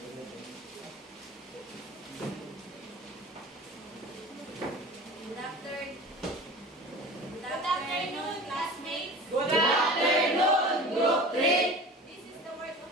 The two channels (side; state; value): both; normal; correlation 0.38